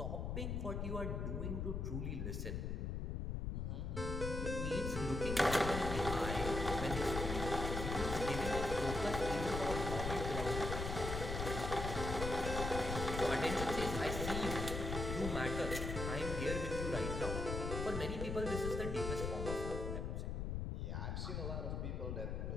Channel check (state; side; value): noise; left; rumble, 2 dB below the sound